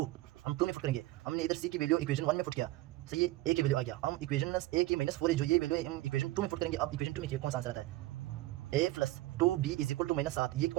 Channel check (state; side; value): quieter; left; 18.0 dB